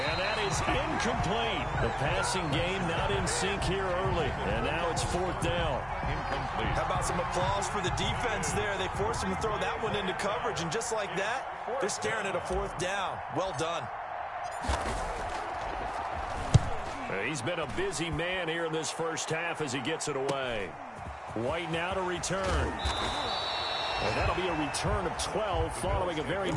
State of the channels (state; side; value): identical; both; correlation 1.00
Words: that is incomplete. The passing game not in sync here early. And now it's 4th down. Incomplete. How about some applause for the defense there? They forced him to throw that one into coverage, and just like that, they're staring at a 4th down. Well done. He's been a busy man here in this first half as he gets it away. White now to return. And that'll be a return of 12 following a very